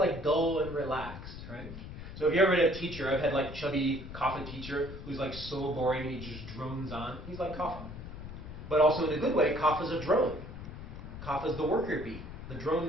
dull and relaxed, right? So if you ever had a teacher, I've had like chubby Kapha teacher who's like so boring and he just drones on. He's like Kapha. But also in a good way, Kapha's a drone. Kapha's the worker bee, the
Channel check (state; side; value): noise; left; rumble, 11 dB below the sound